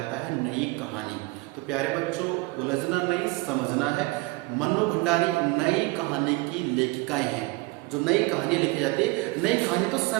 है नई कहानी। तो प्यारे बच्चों, उलझना नहीं, समझना है। मन्नू भंडारी नई कहानी की लेखिकाएं हैं। जो नई कहानी लिखी जाती है, नई कहानी तो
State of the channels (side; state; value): left; quieter; 23.7 dB